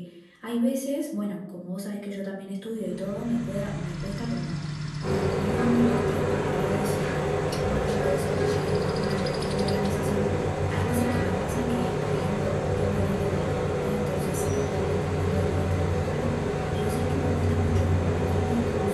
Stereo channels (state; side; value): identical; both; correlation 1.00